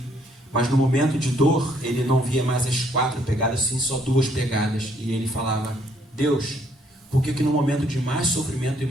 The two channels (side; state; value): both; normal; correlation 0.67